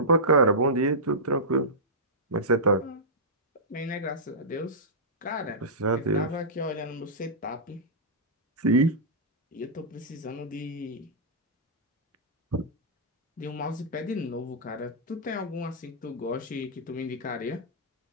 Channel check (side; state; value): both; normal; correlation -0.15